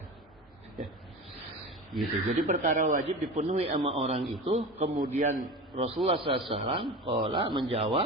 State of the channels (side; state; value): both; normal; correlation 0.30